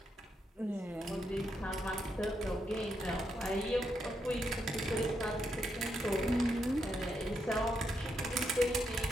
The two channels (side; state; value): both; normal; correlation 0.81